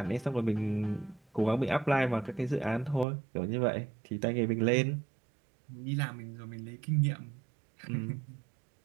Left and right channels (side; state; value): left; drops out; at 3.1 s